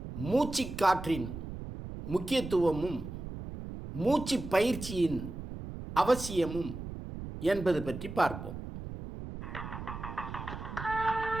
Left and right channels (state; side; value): noise; right; rumble, 9 dB below the sound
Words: மூச்சுக்காற்றின் முக்கியத்துவமும் மூச்சு பயிற்சியின் அவசியமும் என்பது பற்றி பார்ப்போம்.